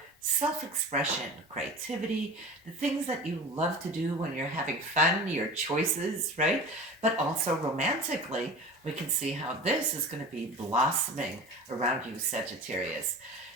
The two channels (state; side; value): normal; both; correlation 0.35